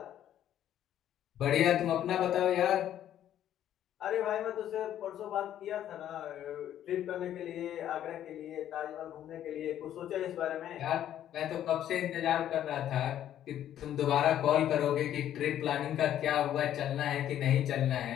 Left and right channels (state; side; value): quieter; right; 11.2 dB